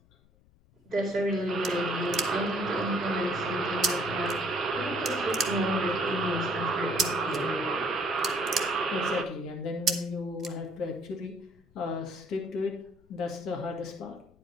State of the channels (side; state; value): left; noise; rumble, 30 dB below the sound